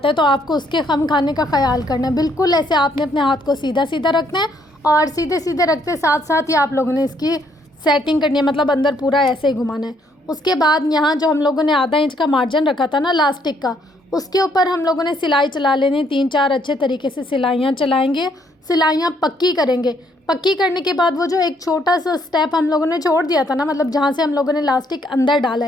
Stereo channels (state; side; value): normal; both; correlation 0.69